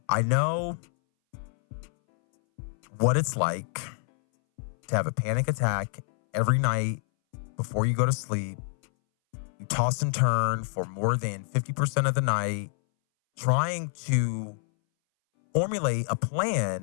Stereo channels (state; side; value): silent; right; 60 dB below the other